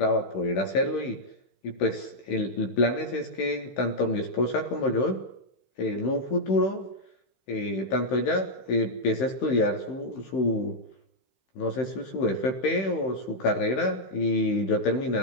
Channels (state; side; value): late; right; 15 ms